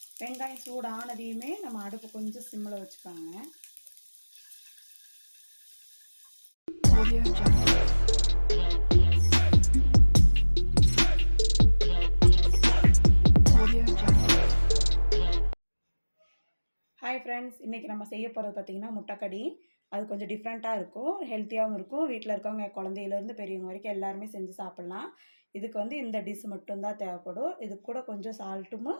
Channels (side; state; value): both; inverted; correlation -1.00